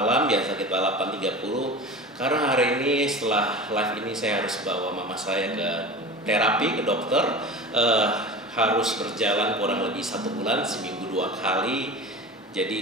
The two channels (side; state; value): both; normal; correlation 0.33